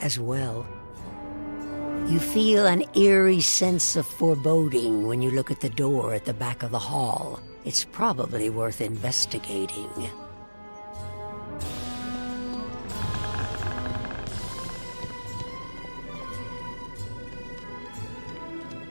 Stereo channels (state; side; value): inverted; both; correlation -1.00